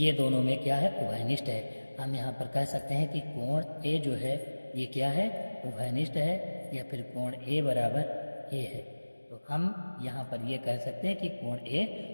दोनों में क्या है, उभयनिष्ठ है। हम यहाँ पर कह सकते हैं कि कोण ए जो है ये क्या है, उभयनिष्ठ है, या फिर कोण ए बराबर ए है। तो हम यहाँ पर ये कह सकते हैं कि कोण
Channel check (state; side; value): inverted; both; correlation -1.00